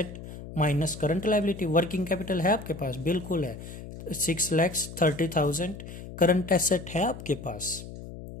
minus current liability. Working capital है आपके पास? बिल्कुल है, 6,30,000 करंट एसेट है आपके पास?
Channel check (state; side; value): noise; left; hum, 12 dB below the sound